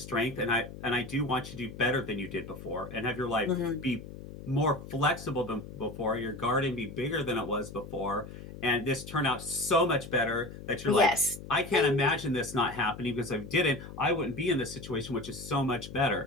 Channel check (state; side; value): noise; left; hum, 13 dB below the sound